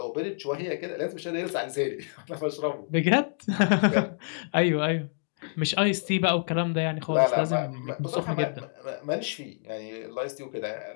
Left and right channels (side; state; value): right; silent; digital silence